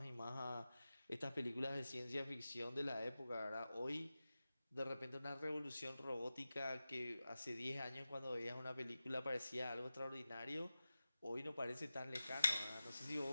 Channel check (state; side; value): inverted; both; correlation -0.94